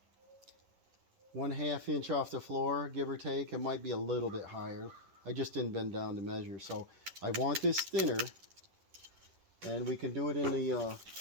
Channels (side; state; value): left; late; 11 ms